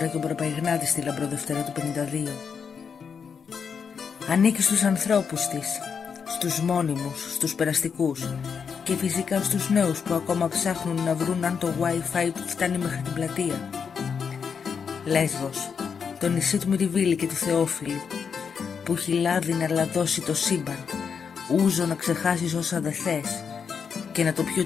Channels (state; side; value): quieter; right; 6.4 dB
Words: και ο Προπαϊγνάτη στη Λαμπροδευτέρα του 52. Ανήκει στους ανθρώπους της, στους μόνιμους, στους περαστικούς και φυσικά στους νέους που ακόμα ψάχνουν να βρουν αν το Wi-Fi φτάνει μέχρι την πλατεία. Λέσβος, το νησί του Μυριβίλη και του Θεόφιλου, που έχει λάδι να λαδώσει το σύμπαν, ούζο να ξεχάσεις όσα δε θες και να το πιει ο